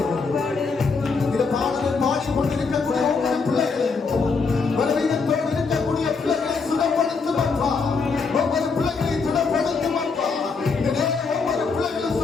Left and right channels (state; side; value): quieter; right; 4.7 dB